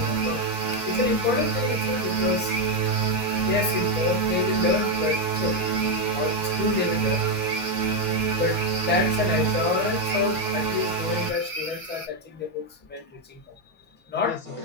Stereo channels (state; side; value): normal; both; correlation 0.04